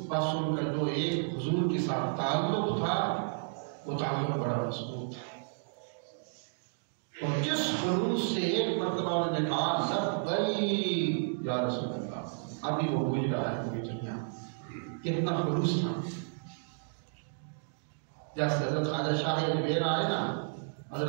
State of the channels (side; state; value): left; silent; digital silence